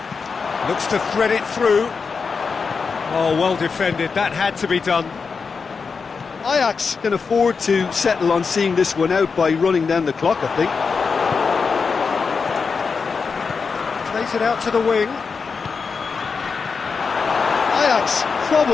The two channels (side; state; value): right; quieter; 5.2 dB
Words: Looks to thread it through. Oh, well defended. That had to be done. Ajax can afford to settle on seeing this one out by running down the clock, I think. Plays it out to the wing. Ajax